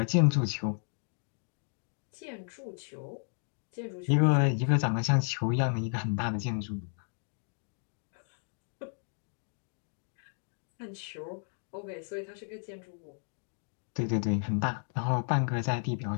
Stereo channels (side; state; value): right; silent; 55 dB below the other